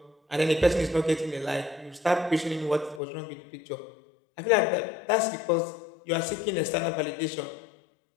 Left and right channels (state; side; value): drops out; right; at 3.0 s